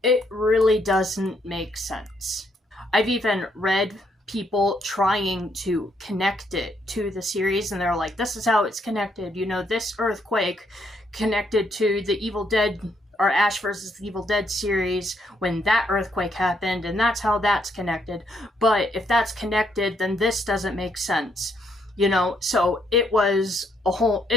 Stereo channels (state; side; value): normal; both; correlation 0.73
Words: it really doesn't make sense. I've even read people trying to connect it to the series, and they're like, this is how it's connected. You know, this earthquake connected to the Evil Dead, or Ash vs. the Evil Dead series when that earthquake happened, and that's how that's connected. But if that's connected, then this doesn't make sense. You know, so it's a